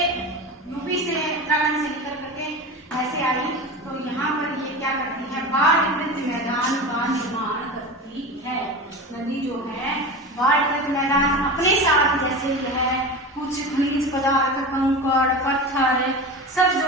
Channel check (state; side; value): normal; both; correlation 0.28